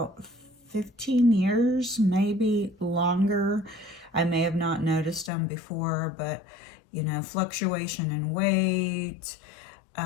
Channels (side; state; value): right; drops out; at 5.3 s